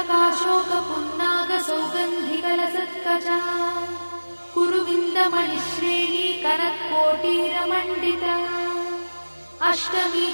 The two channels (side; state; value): both; inverted; correlation -1.00